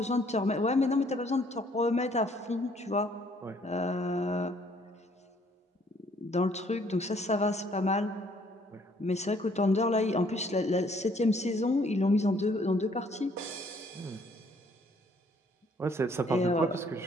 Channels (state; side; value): normal; both; correlation 0.63